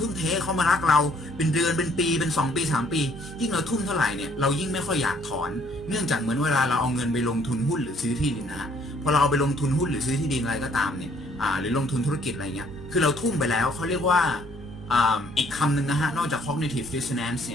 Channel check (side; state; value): both; normal; correlation 0.63